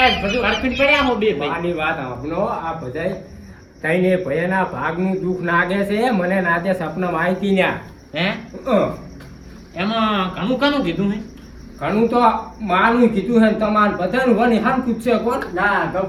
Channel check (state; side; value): identical; both; correlation 1.00